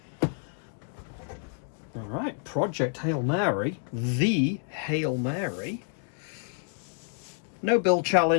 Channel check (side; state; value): right; silent; 55 dB below the other